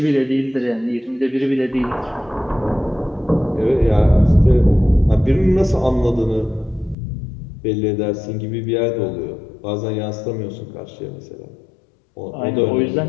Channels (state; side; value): drops out; right; at 7.0 s